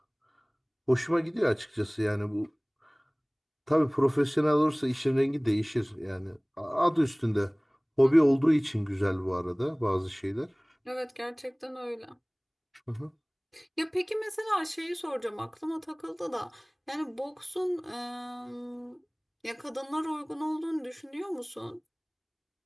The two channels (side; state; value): both; identical; correlation 1.00